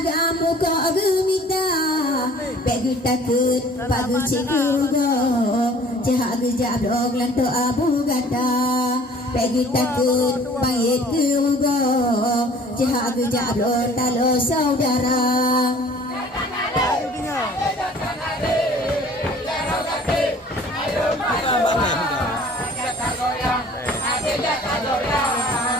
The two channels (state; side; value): normal; both; correlation 0.51